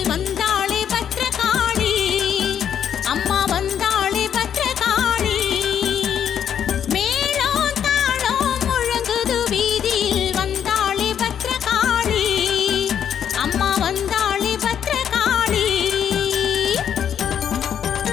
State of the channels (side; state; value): right; quieter; 8.8 dB